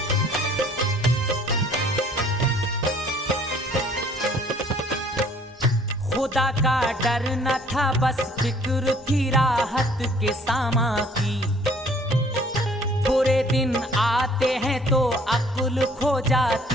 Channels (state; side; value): normal; both; correlation 0.57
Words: खुदा का डर न था, बस फिक्र थी राहत के सामा की। बुरे दिन आते हैं तो अक्ल खो